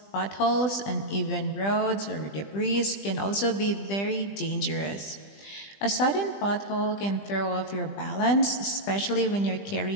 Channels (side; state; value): right; late; 20 ms